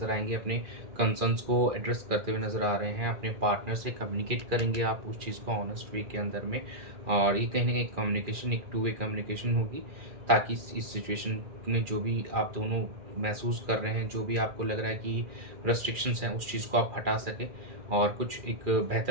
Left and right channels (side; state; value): left; late; 2.4 ms